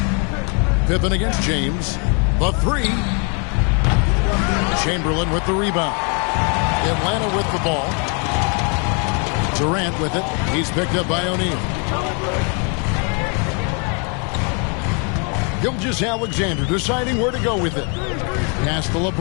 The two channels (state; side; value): quieter; right; 37.1 dB